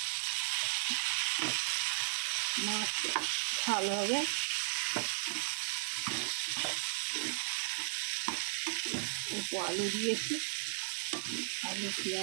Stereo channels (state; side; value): silent; left; digital silence